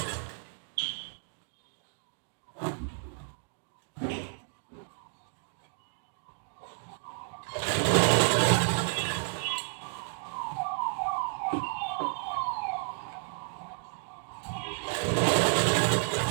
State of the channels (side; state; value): left; silent; 57 dB below the other